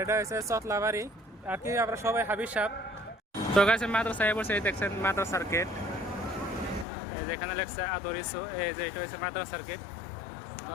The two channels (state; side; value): drops out; right; at 6.9 s